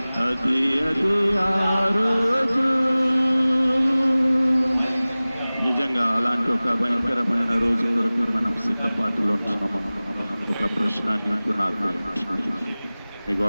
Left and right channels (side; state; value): both; inverted; correlation -0.99